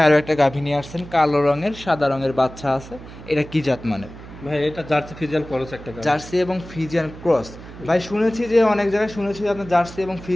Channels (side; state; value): right; noise; hum, 16 dB below the sound